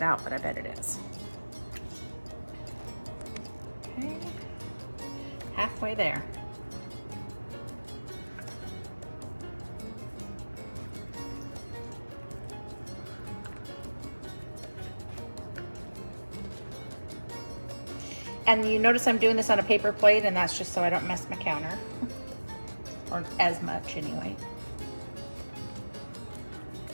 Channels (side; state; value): both; inverted; correlation -1.00